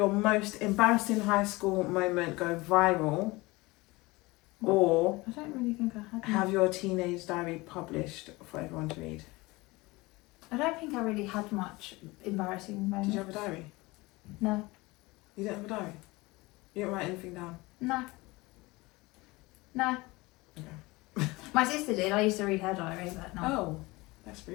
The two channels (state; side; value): quieter; right; 22.3 dB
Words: most embarrassing high school moment go viral, or I don't really think I had. have your teenage diary published for everyone to read? I don't think I really had much embarrassing moments. Did you have a diary? No. You didn't have a diary? You didn't write anything down? No. Okay. My sister did. I used to read her diary, but no. Oh, that's